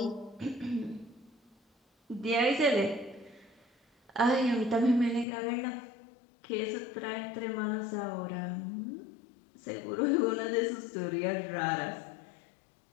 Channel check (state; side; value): drops out; right; at 5.2 s